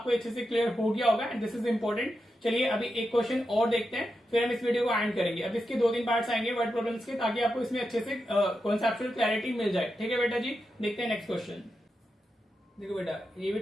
अच्छे से क्लियर हो गया होगा एंड दिस इज इंपॉर्टेंट। चलिए अभी एक क्वेश्चन और देखते हैं, फिर हम इस वीडियो को एंड करेंगे। अब इसके 2-3 पार्ट्स आएंगे वर्ड प्रॉब्लम्स के, ताकि आपको इसमें अच्छे से कॉन्सेप्चुअल क्लैरिटी मिल जाए, ठीक है बेटा जी। देखते हैं नेक्स्ट क्वेश्चन। देखो बेटा, ये भी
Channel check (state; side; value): normal; both; correlation 0.88